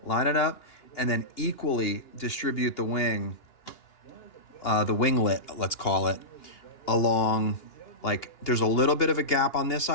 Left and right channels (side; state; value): right; late; 2.8 ms